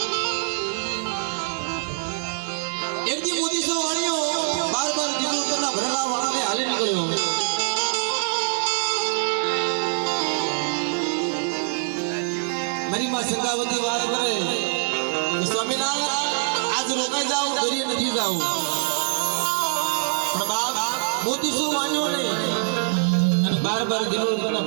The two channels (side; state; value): left; silent; digital silence